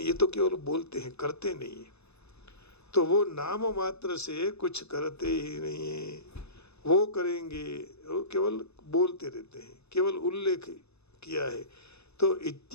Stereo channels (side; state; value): right; late; 0.79 ms